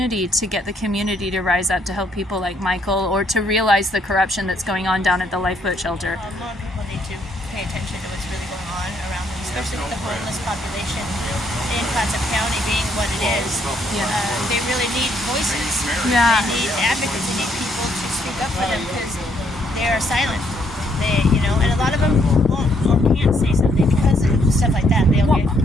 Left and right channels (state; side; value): normal; both; correlation 0.70